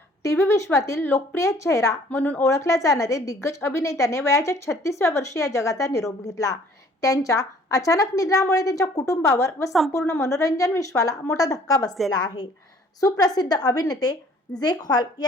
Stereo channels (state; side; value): normal; both; correlation 0.56